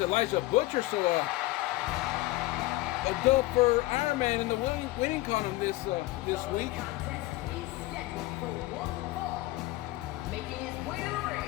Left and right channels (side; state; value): right; quieter; 18.7 dB